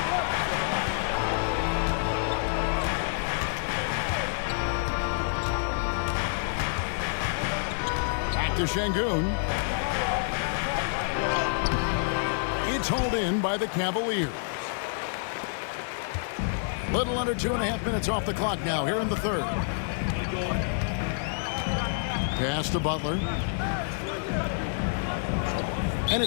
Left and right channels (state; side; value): silent; right; digital silence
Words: Back to Şengün. It's hauled in by the Cavaliers. Little under 2.5 minutes off the clock now here in the third. Pass to Butler. And